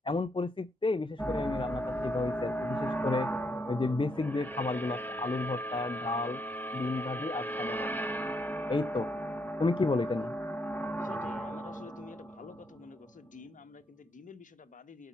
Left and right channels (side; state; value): both; normal; correlation 0.76